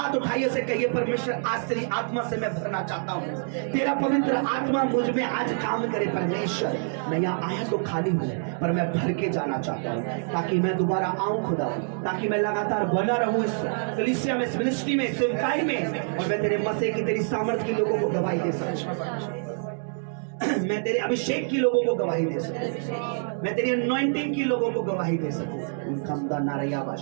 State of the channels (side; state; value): left; silent; 61 dB below the other